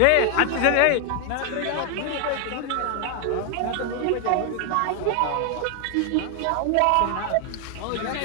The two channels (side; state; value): both; different; correlation 0.00